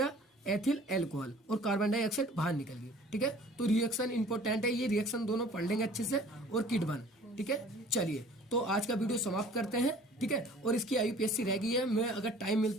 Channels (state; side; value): normal; both; correlation 0.50